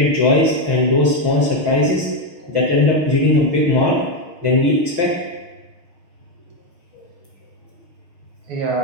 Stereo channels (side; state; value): left; late; 6.4 ms